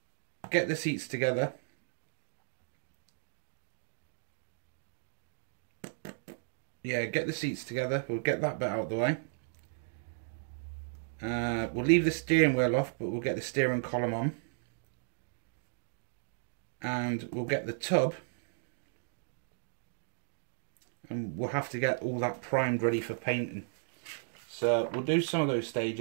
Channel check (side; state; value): left; silent; digital silence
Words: get the seats together. Yeah, get the seats together. We'll get that bit out of the way. We'll leave the steering wheel off, but we'll get the steering column on. And we'll get the tub. And we'll have to get all that primed ready for painting. So we'll do some of those